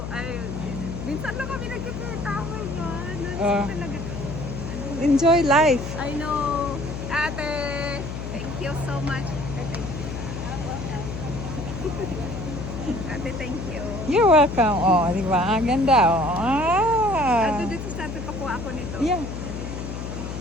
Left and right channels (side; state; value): left; noise; hum, 6 dB below the sound